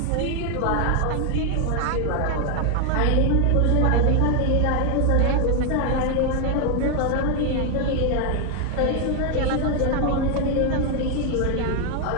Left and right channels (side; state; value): both; different; correlation 0.01